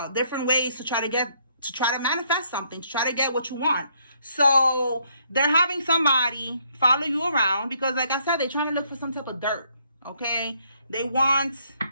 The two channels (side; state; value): both; inverted; correlation -0.69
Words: different ways to try to manifest something, to try to get what you want. So they're having somebody follow you around because, like I said, they're trying to look for some type of dirt. Okay, they want